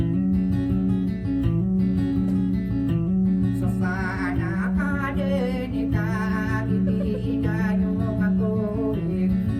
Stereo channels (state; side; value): identical; both; correlation 1.00